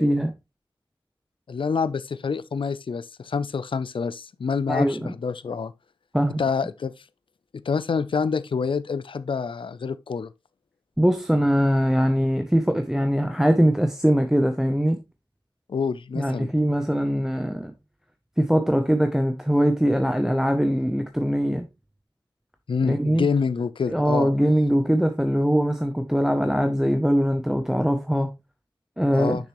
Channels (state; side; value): normal; both; correlation 0.93